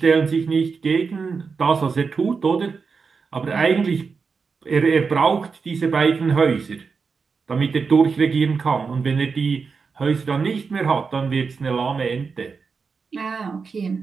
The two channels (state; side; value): quieter; left; 5.1 dB